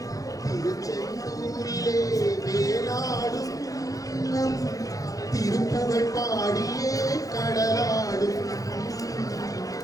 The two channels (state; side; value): late; right; 0.17 ms